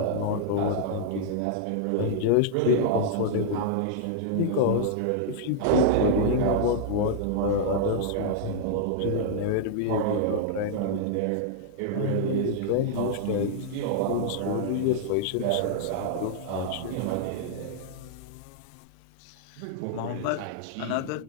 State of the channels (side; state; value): both; different; correlation -0.01